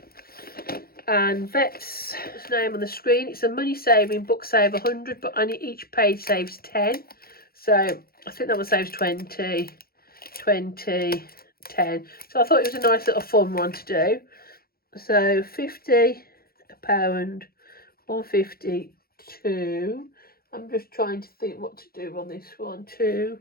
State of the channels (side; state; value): right; late; 0.44 ms